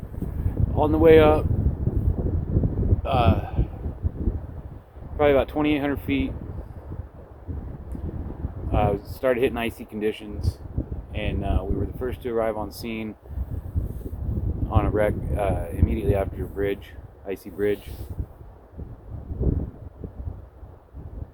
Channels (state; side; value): identical; both; correlation 1.00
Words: On the way up, probably about 2,800 feet, started hitting icy conditions, and we were the first to arrive on scene on a wreck immediately after a bridge, icy bridge.